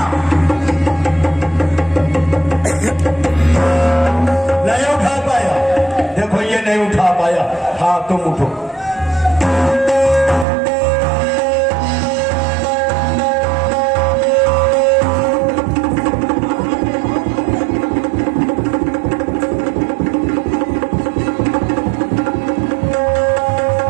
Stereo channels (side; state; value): left; drops out; at 10.5 s